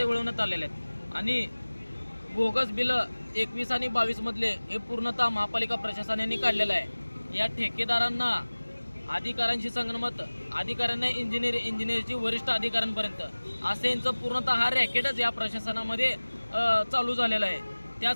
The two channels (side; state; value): both; inverted; correlation -1.00